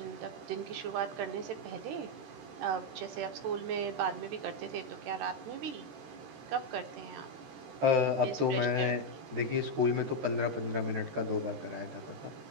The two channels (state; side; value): late; left; 13 ms